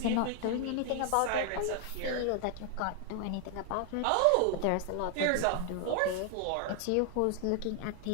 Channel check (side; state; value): both; different; correlation 0.00